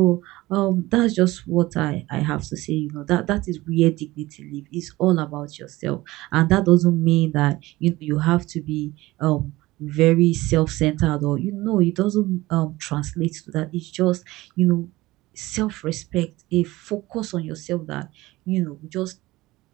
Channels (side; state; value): left; quieter; 18.9 dB